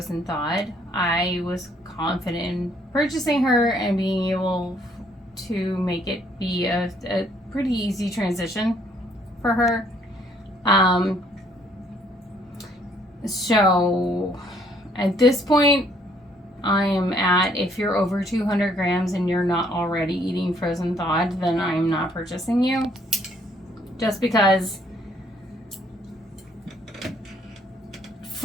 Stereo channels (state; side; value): normal; both; correlation 0.65